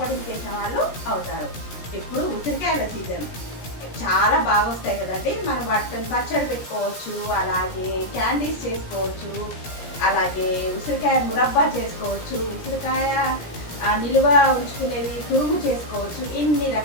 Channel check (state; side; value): late; right; 17 ms